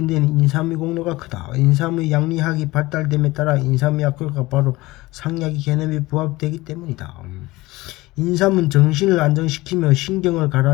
데는 인삼의 공로가 크다. 인삼의 양리학이 발달됨에 따라 인삼의 약효가 바로 상약의 개념에 부합되기 때문이다. 인삼은 정신을 안정시키며 신경을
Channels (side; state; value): right; quieter; 20.1 dB